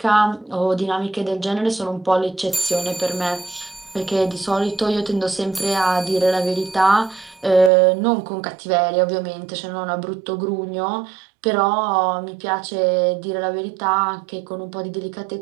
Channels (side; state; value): left; drops out; at 7.7 s